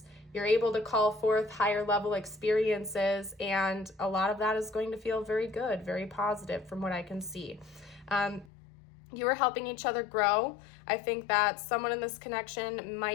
you're able to call forth higher level experiences, and a lot of that is going to feel very good, very positive from what I can see. you are helping each other grow. I think that someone in this connection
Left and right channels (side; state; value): right; drops out; at 8.5 s